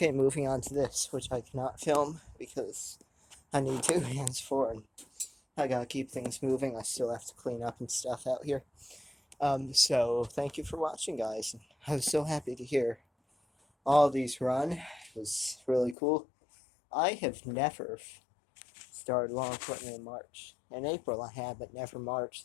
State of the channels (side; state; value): right; drops out; at 16.0 s